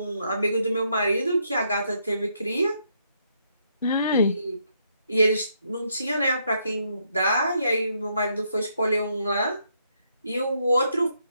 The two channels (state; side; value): inverted; both; correlation -0.75